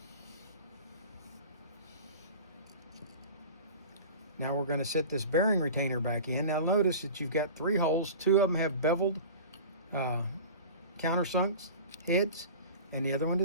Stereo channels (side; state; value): both; inverted; correlation -0.37